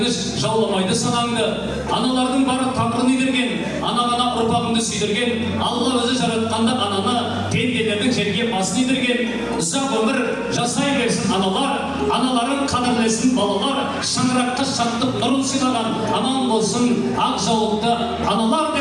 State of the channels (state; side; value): identical; both; correlation 1.00